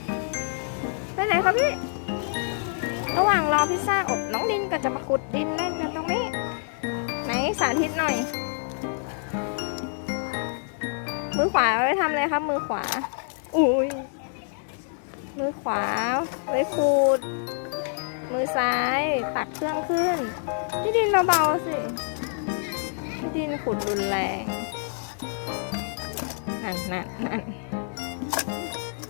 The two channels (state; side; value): silent; right; digital silence